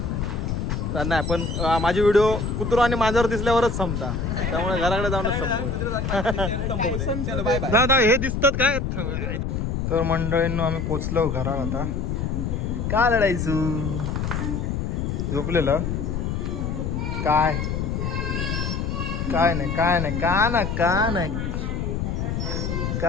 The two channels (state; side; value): noise; left; rumble, 1 dB below the sound